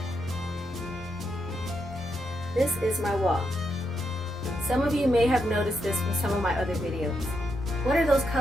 This is my wall. Some of you may have noticed this from some of my other videos. What are those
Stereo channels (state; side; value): normal; both; correlation 0.82